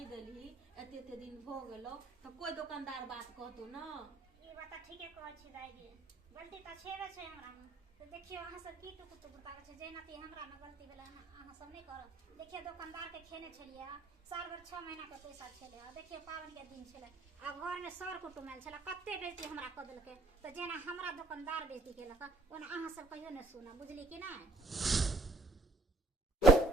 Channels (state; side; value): quieter; left; 3.1 dB